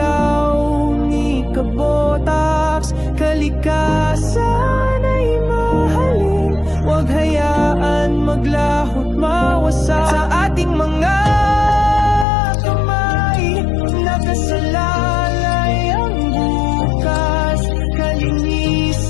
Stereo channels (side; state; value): right; drops out; at 12.2 s